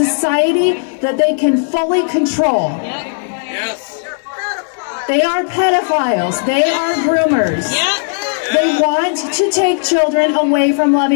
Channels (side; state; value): right; silent; digital silence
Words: that they can fully control. They are pedophiles. They are groomers. They want to take children away from